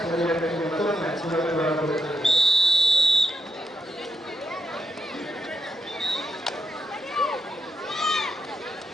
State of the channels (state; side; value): normal; both; correlation 0.81